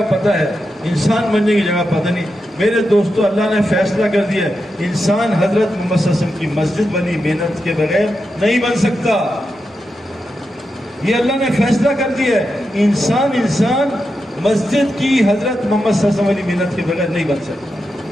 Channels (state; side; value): normal; both; correlation 0.88